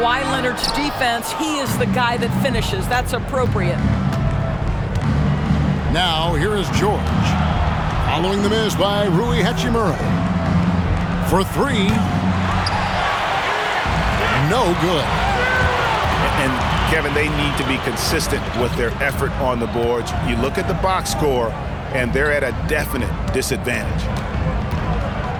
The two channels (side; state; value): both; identical; correlation 1.00